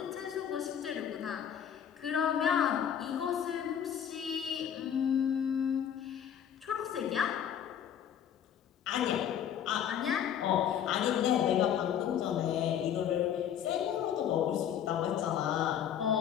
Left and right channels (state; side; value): quieter; right; 9.2 dB